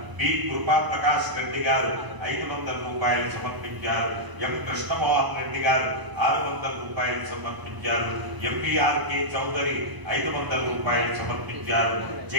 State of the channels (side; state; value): left; late; 1.0 ms